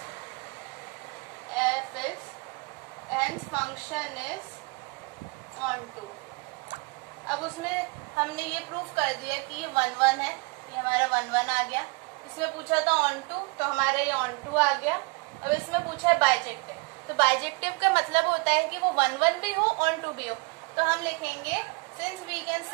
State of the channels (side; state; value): left; quieter; 29.1 dB